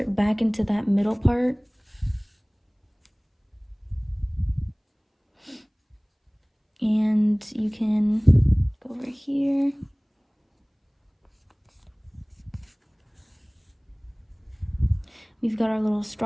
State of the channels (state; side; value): identical; both; correlation 1.00